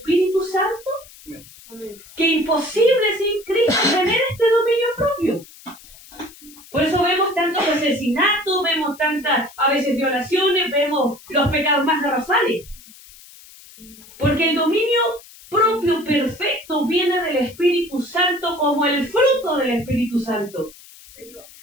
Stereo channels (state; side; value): noise; left; hiss, 21 dB below the sound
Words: Santo? Que imposible sin Cristo tener este dominio propio. Por eso vemos tantos asesinatos, vemos tantas, a veces violaciones, vemos los pecados más garrafales. Porque el dominio propio perfecto viene del Espíritu Santo como el fruto del Espíritu Santo.